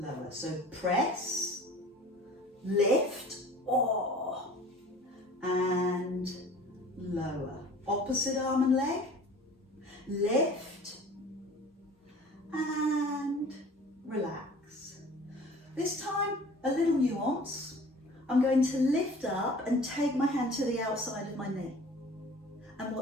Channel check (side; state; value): both; normal; correlation 0.45